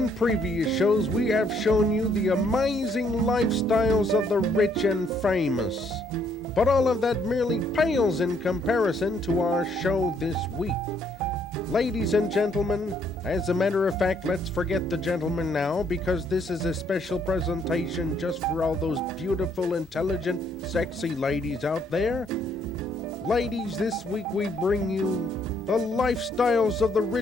previous shows, we have shown you the amazing lifestyles of the rich and famous. But all of that merely pales in comparison to our show this week. Ladies and gentlemen, as a matter of fact, let's forget the gentlemen now, because this is a special presentation just for all those beautiful, intelligent, sexy ladies out there. Ladies, this week we bring you the lifestyles of the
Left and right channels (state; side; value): normal; both; correlation 0.69